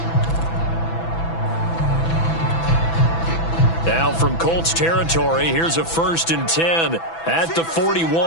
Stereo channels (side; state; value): right; late; 6.0 ms